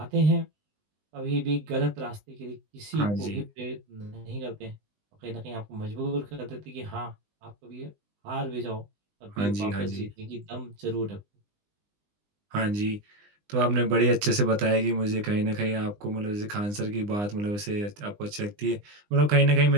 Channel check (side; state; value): left; late; 20 ms